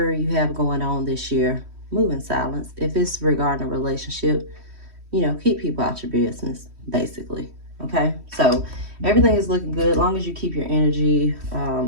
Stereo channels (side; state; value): left; late; 3.1 ms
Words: you have going on this year, move in silence. If it's regarding a relationship, you know, keep people out your business, basically. Okay, so everything is looking good. As long as you keep your energy,